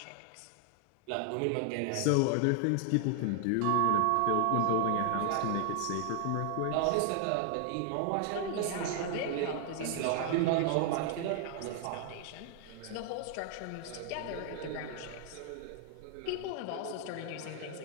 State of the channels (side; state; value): both; different; correlation 0.00